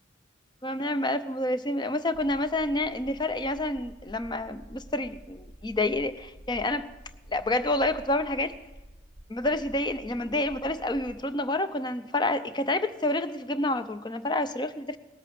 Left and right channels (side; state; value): both; normal; correlation 0.30